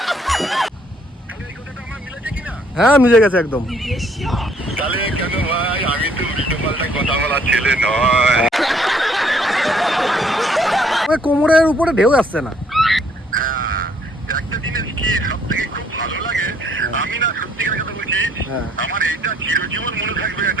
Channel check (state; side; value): normal; both; correlation 0.64